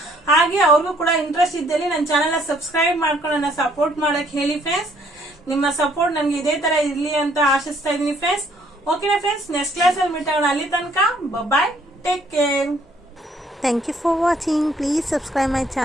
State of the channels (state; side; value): normal; both; correlation 0.64